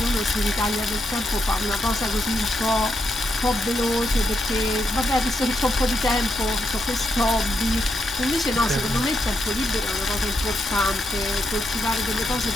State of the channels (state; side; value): normal; both; correlation 0.81